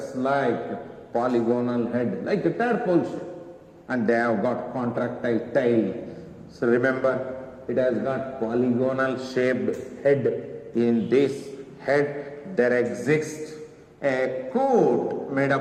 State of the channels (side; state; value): both; identical; correlation 1.00